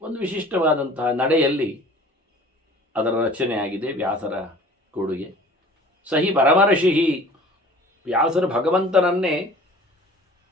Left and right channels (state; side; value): normal; both; correlation 0.47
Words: ಒಂದು ವಿಶಿಷ್ಟವಾದಂತಹ ನಡೆಯಲ್ಲಿ ಅದರ ರಚನೆಯಾಗಿದೆ. ವ್ಯಾಸರ ಕೊಡುಗೆ. ಸಹಿ ಪರಮರ್ಷಿಹಿ, ವ್ಯಾಸರು ಭಗವಂತನನ್ನೇ